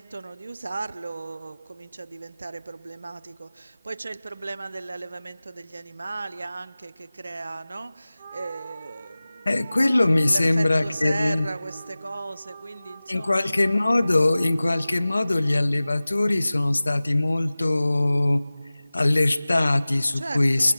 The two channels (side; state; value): both; inverted; correlation -0.98